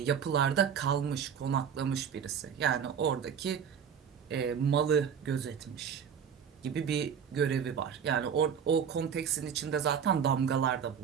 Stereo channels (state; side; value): quieter; left; 7.6 dB